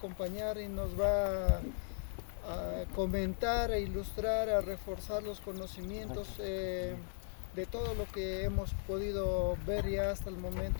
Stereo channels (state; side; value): silent; right; digital silence